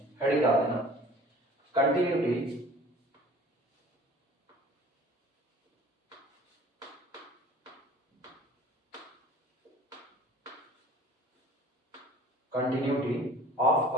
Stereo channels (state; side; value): normal; both; correlation 0.47